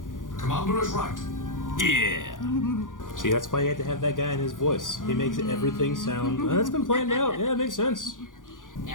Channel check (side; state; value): right; late; 0.88 ms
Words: Commander is right. Yeah. See, that's why you have to have that guy in his voice. He makes everything sound. That's been planned out. Yeah, it makes sense.